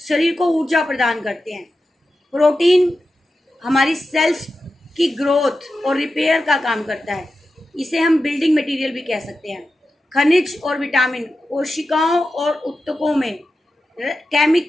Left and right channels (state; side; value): normal; both; correlation 0.91